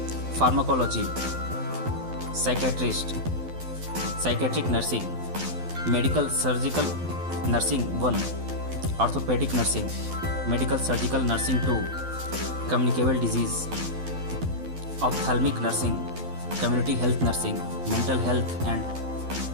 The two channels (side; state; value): left; late; 12 ms